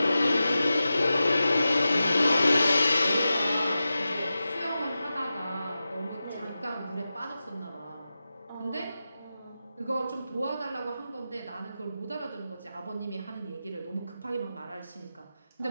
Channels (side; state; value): both; inverted; correlation -0.93